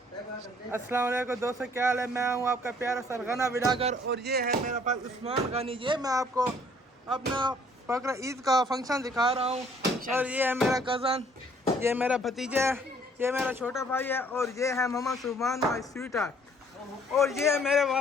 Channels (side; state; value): both; normal; correlation 0.60